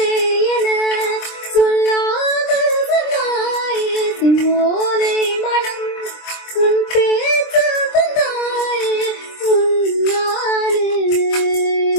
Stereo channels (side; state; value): right; late; 23 ms